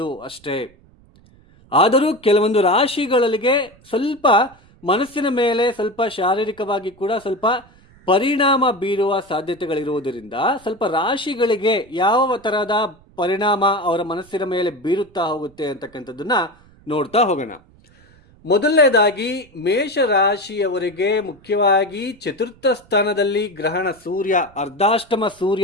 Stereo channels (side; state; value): right; noise; rumble, 28 dB below the sound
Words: ಅಷ್ಟೇ. ಆದರೂ ಕೆಲವೊಂದು ರಾಶಿಗಳಿಗೆ ಸ್ವಲ್ಪ ಮನಸ್ಸಿನ ಮೇಲೆ ಸ್ವಲ್ಪ ಶಾರೀರಿಕವಾಗಿ ಕೂಡ ಸ್ವಲ್ಪ ಪರಿಣಾಮ ಬೀರುವ ಸಾಧ್ಯತೆಗಳಿರುವುದರಿಂದ ಸ್ವಲ್ಪ ರಾಶಿಗಳಿಗೆ ಯಾವ ತರಹದ ಪರಿಣಾಮ ಅವರ ಮನಸ್ಸಿನ ಮೇಲೆ ಬೀರುತ್ತಾ ಹೋಗುತ್ತೆ ಅಂತಕ್ಕಂಥದ್ದನ್ನ ನೋಡ್ತಾ ಹೋಗೋಣ. ಮೊದಲನೇದಾಗಿ ಮೇಷ ರಾಶಿಯವರಿಗೆ ಮುಖ್ಯವಾಗಿ ಚತುರ್ಥ ಸ್ಥಾನದಲ್ಲಿ ಗ್ರಹಣ ಸೂರ್ಯ, ಅರ್ಧಾಷ್ಟಮ